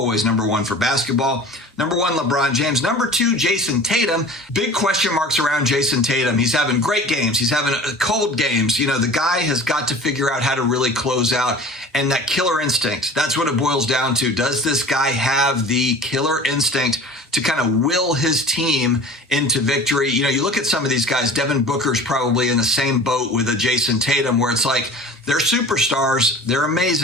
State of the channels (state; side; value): normal; both; correlation 0.41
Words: number one for basketball. Number one, LeBron James. Number two, Jason Tatum. Big question marks around Jason Tatum. He's having great games. He's having cold games. You know, the guy has got to figure out how to really close out. And that killer instinct, that's what it boils down to. Does this guy have the killer instinct to kind of will his team into victory? You know, you look at some of these guys, Devin Booker's probably in the same boat with a Jason Tatum, where it's like, they're superstars, they're